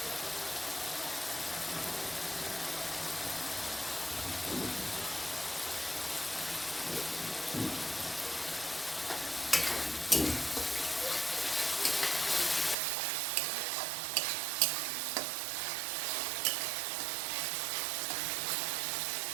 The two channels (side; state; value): left; drops out; at 12.8 s